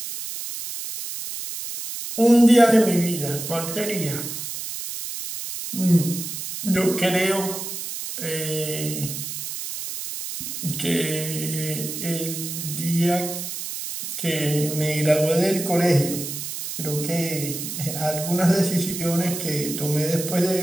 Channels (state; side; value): noise; right; hiss, 7 dB below the sound